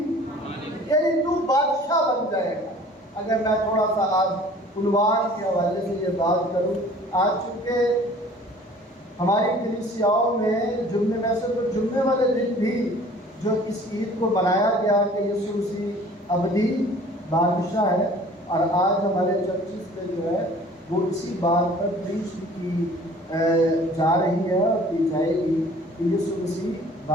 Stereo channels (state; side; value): normal; both; correlation 0.50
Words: یعنی تو بادشاہ بن جائے گا۔ اگر میں تھوڑا سا آج عنوان کے حوالے سے یہ بات کروں، آج چونکہ ہماری کلیسیاؤں میں جمعے میں سے تو جمعے والے دن بھی جو اس عید کو منایا گیا کہ یسوع مسیح ابدی بادشاہ ہے، اور آج ہمارے چرچز میں جو ہے وہ اسی بات پر پریچ کی جا رہی ہے اور کی جائے گی کہ یسوع مسیح